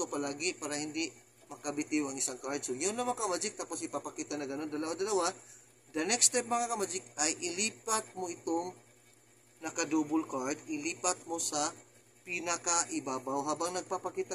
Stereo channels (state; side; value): identical; both; correlation 1.00